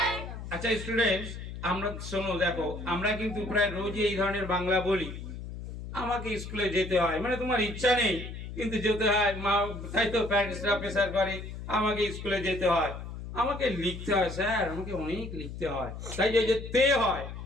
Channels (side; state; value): left; noise; hum, 9 dB below the sound